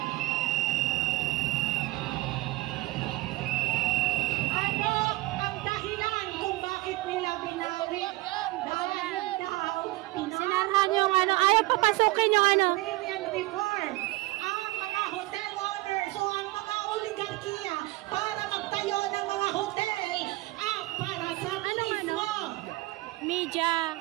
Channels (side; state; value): left; quieter; 20.4 dB